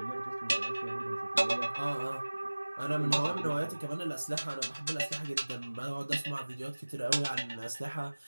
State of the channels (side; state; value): both; inverted; correlation -1.00